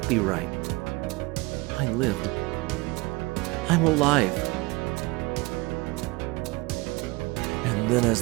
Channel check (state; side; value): quieter; left; 23.9 dB